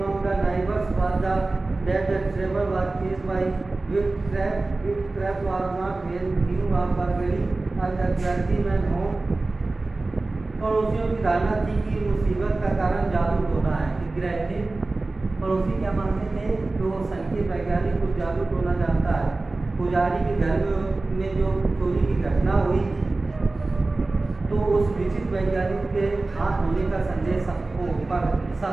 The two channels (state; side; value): quieter; left; 3.2 dB